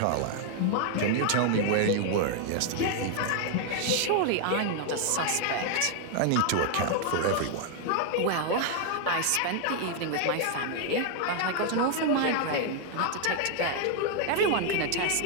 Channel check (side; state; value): both; different; correlation 0.00